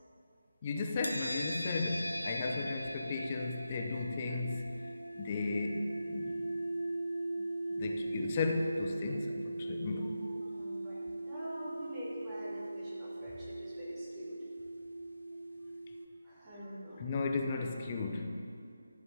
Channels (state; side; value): inverted; both; correlation -0.86